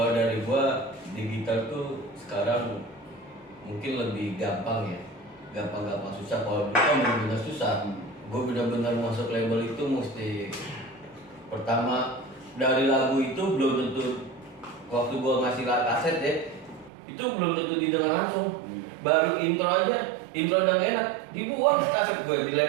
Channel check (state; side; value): drops out; left; at 16.9 s